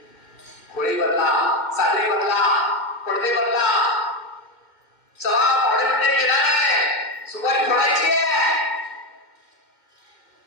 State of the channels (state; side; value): late; right; 2.1 ms